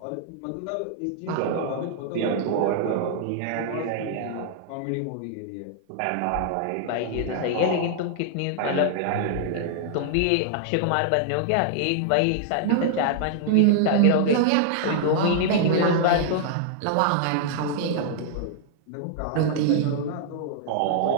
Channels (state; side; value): different; both; correlation -0.01